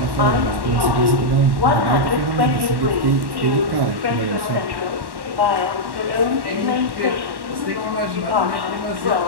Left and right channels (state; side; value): late; left; 1.1 ms